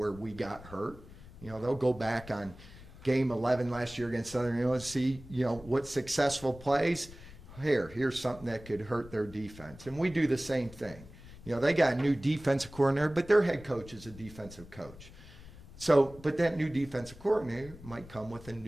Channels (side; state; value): left; noise; rumble, 18 dB below the sound